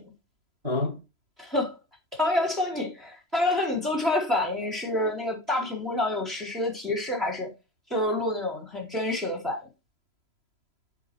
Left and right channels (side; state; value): left; late; 3.0 ms